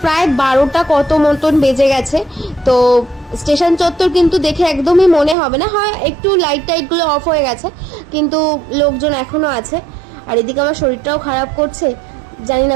প্রায় 12টা কত মতন বেজে গেছে। তো স্টেশন চত্বর কিন্তু দেখে একদমই মনে হবে না, হয় একটু লাইট টাইটগুলো অফ হয়ে গেছে, কিন্তু লোকজন এখনও আছে। আর এদিকে আমার শরীরটাও খারাপ করছে, জানি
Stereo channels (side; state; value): left; drops out; at 5.4 s